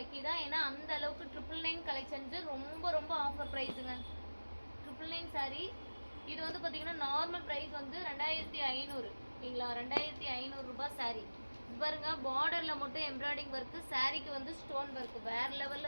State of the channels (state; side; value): inverted; both; correlation -1.00